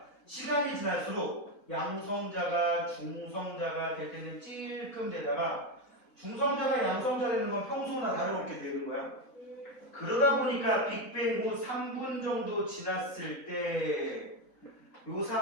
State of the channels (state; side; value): normal; both; correlation 0.11